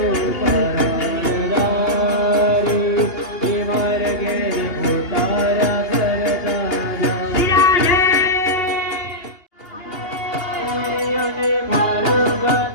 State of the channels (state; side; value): late; right; 2.8 ms